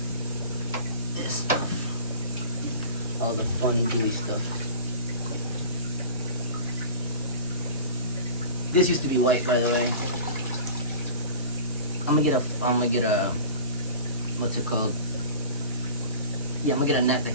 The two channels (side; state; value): both; inverted; correlation -0.37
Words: this stuff. All the fun gooey stuff. This used to be white, by the way. I'm gonna get a what's it called? Yeah, I'm gonna get a net to